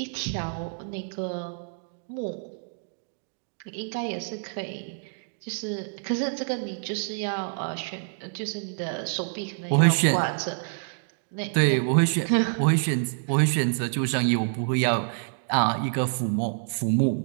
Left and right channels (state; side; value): silent; left; digital silence